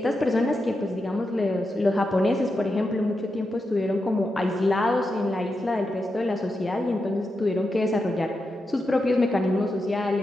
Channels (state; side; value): normal; both; correlation 0.87